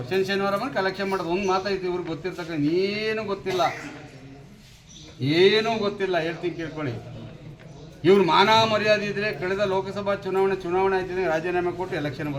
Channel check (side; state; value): both; identical; correlation 1.00